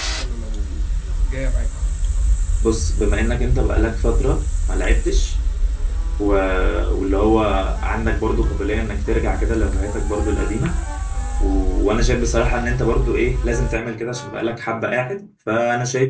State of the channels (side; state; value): both; identical; correlation 1.00